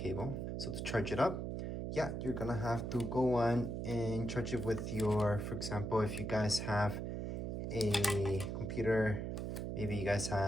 So to charge it up, yeah, you're gonna have to go on and charge it with your, for example, if you guys have a computer, maybe you guys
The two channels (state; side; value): noise; right; hum, 3 dB below the sound